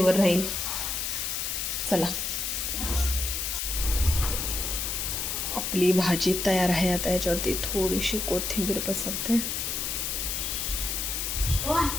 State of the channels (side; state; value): left; noise; hiss, 1 dB below the sound